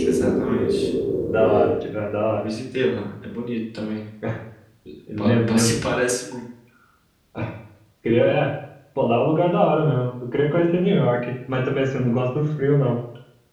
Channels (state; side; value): identical; both; correlation 1.00